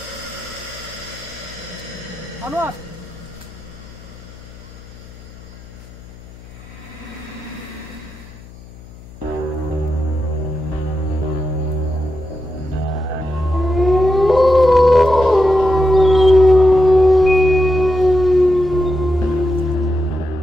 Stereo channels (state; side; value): noise; left; hum, 19 dB below the sound